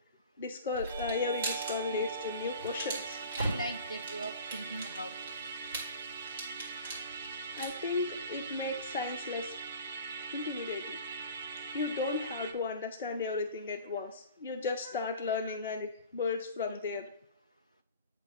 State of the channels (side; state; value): both; inverted; correlation -0.42